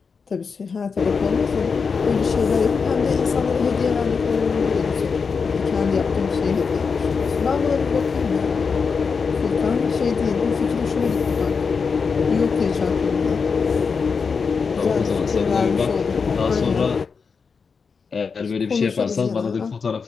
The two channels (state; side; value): quieter; right; 5.4 dB